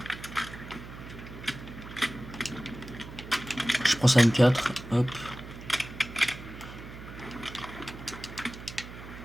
Je prends ça M4. Hop.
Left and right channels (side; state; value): right; noise; hum, 13 dB below the sound